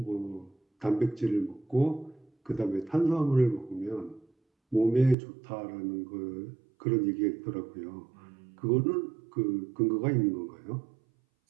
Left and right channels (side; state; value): left; drops out; at 5.2 s